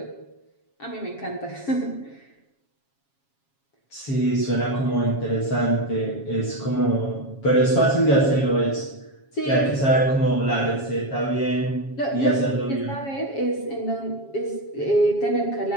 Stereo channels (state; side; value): late; right; 7.3 ms